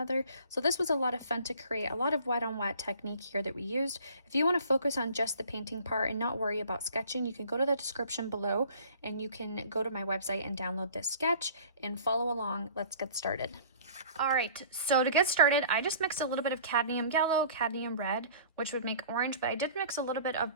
So this was a lot of fun to create, a lot of wet on wet technique here that we used. If you want to focus on just the painting part and not worry about sketching, you can go to the description below and you can go to my website and download this sketch and follow along. Let's get started. All right, so to get started, I just mixed a little bit of cadmium yellow, cadmium red, which would make orange, but I did mix a little bit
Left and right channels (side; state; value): both; inverted; correlation -0.49